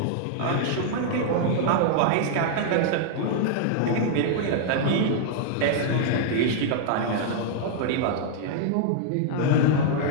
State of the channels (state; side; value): different; both; correlation -0.01